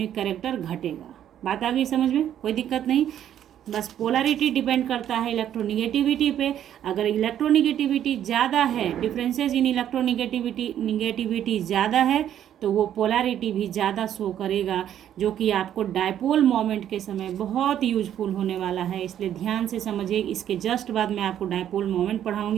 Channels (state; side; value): quieter; left; 10.5 dB